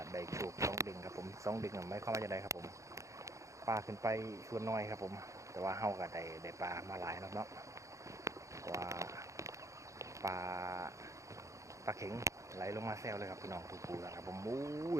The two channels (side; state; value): left; late; 0.15 ms